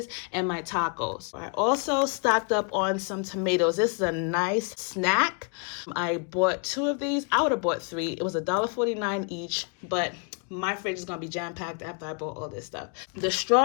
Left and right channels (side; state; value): right; quieter; 37.7 dB